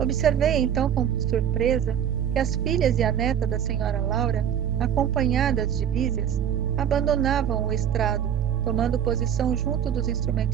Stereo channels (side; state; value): left; quieter; 9.3 dB